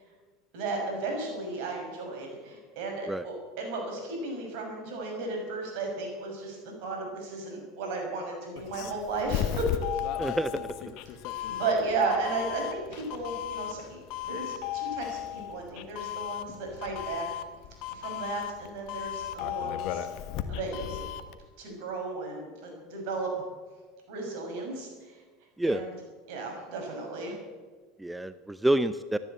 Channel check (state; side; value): normal; both; correlation 0.32